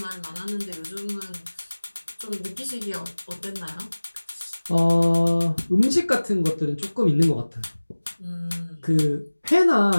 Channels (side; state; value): both; inverted; correlation -1.00